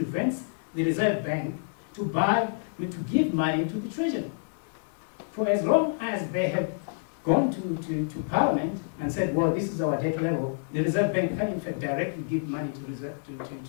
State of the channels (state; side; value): silent; right; digital silence